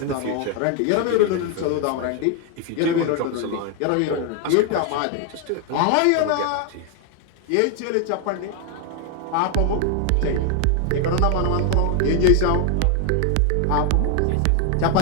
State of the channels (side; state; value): both; different; correlation 0.00